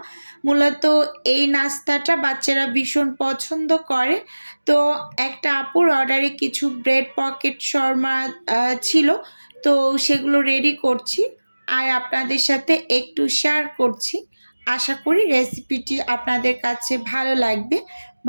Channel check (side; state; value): both; inverted; correlation -1.00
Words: মূলত এই নাস্তাটা বাচ্চারা ভীষণ পছন্দ করে। তো একটা আপুর অর্ডারে কিছু ব্রেড পকেট শর্মা ছিল, তো সেগুলো রেডি করছি আর আপনাদের সাথে একটু শেয়ার করছি। আশা করি রেসিপিটি আপনাদের কাছে ভালো লাগবে।